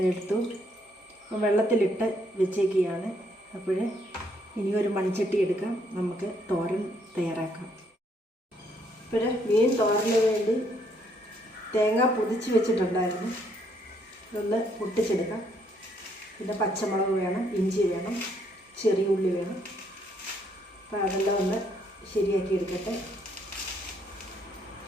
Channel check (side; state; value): both; normal; correlation 0.70